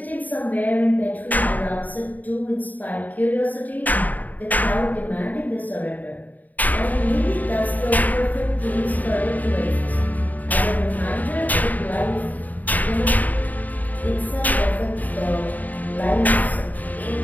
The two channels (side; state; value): right; late; 0.080 ms